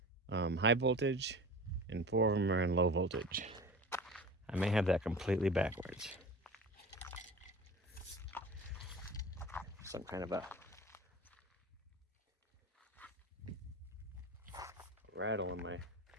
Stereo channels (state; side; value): normal; both; correlation 0.35